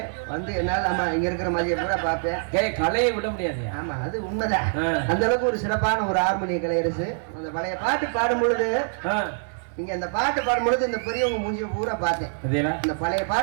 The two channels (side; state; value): left; silent; 62 dB below the other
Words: வந்து என்னால ஆமா இங்க இருக்கிற மாதிரியே கூட பார்ப்பேன். கலையை விட முடியாது. ஆமா அது உண்மைதான். அந்த அளவுக்கு ஒரு சிறப்பான ஒரு ஆர்மணிய கலையரசு. அந்த பழைய பாட்டு பாடும் பொழுது நீங்க இந்த பாட்டு பாடும் பொழுது இந்த பெரியவங்க மூஞ்சிய பூரா பார்த்தேன். இந்த பழைய